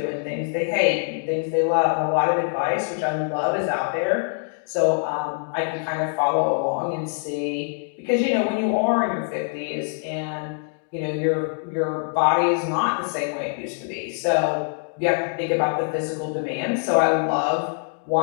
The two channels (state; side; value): silent; right; 63 dB below the other